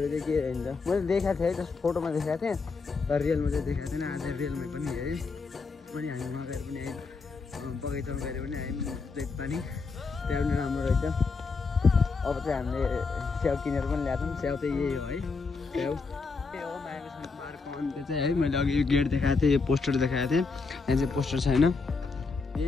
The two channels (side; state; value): right; quieter; 4.4 dB